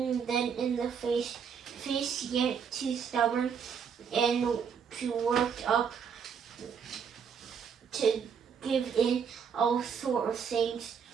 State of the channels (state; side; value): quieter; left; 6.8 dB